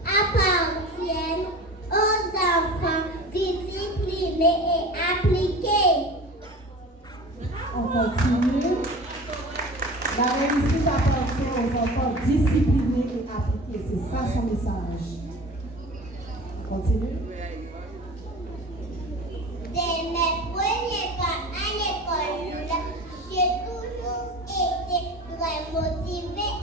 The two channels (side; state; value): both; normal; correlation 0.37